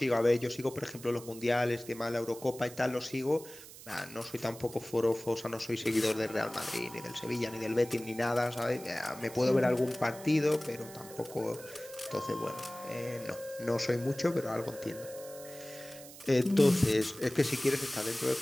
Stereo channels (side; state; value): right; noise; hiss, 16 dB below the sound